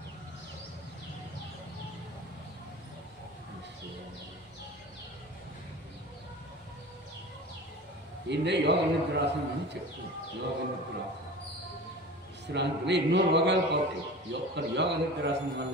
ఈయన యోగ నిద్రాసనం అని చెప్తుంది. యోగ నిద్రాసనం విశ్రాంతిలో ఎన్నో రోగాలు పోతాయి. యోగ నిద్రాసనం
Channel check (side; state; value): both; normal; correlation 0.36